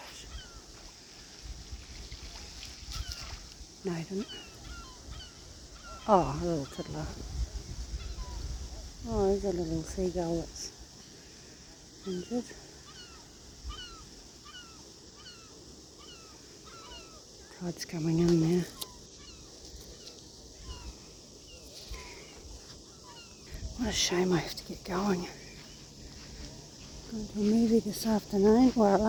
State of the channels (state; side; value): identical; both; correlation 1.00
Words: No, he didn't. Oh, a little tiddler. Oh, there's a little seagull that's injured. Tide's coming in now. What a shame I have to get going. Going to a movie this afternoon, well, at